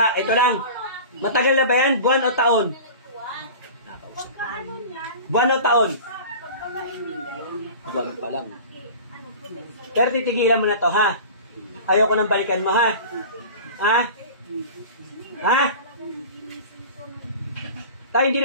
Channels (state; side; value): inverted; both; correlation -0.37